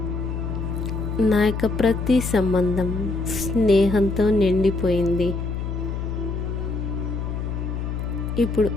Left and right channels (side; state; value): left; noise; hum, 3 dB below the sound